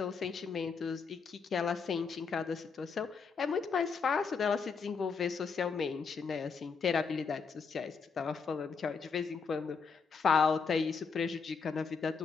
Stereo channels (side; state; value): right; quieter; 5.4 dB